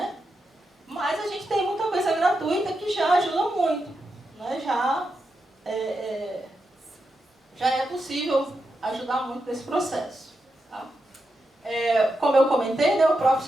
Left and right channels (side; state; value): both; normal; correlation 0.86